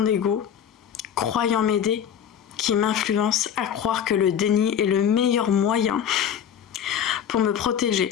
ego, croyant m'aider, qui m'influence à croire que le déni est le meilleur moyen pour me protéger.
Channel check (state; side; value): quieter; right; 8.8 dB